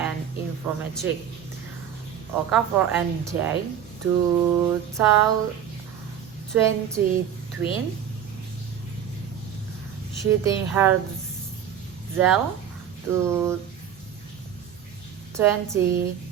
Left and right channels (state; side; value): quieter; left; 9.0 dB